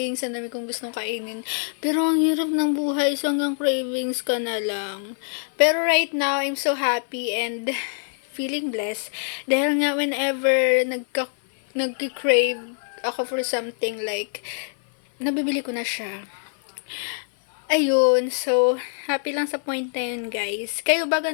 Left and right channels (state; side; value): silent; right; 58 dB below the other